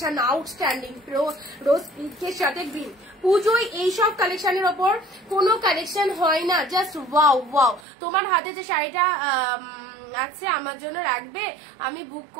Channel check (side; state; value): left; drops out; at 7.8 s